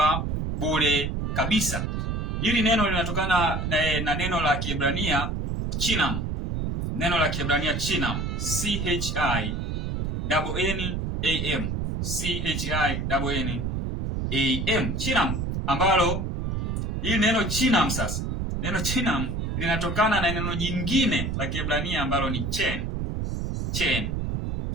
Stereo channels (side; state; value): right; noise; rumble, 2 dB below the sound